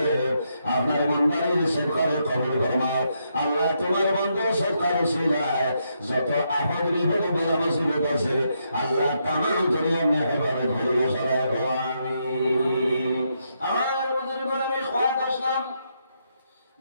আপনার বান্দার সরকারে কবুল ফরমাও। আল্লাহ তোমার বান্দা সরকার উসিলায় যত আফত বিপদ বেলা মুসিবত আছে আল্লাহ তামাম দুনিয়া মেহরবানি ধরিয়ে সরায় দাও আমিন। আমার বুজুর্গ আমি খোয়াত আসলাম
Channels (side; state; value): both; inverted; correlation -0.79